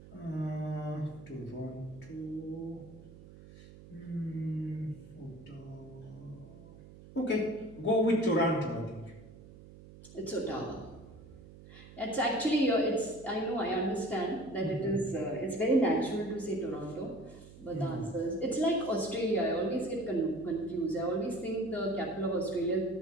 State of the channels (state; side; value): noise; right; hum, 18 dB below the sound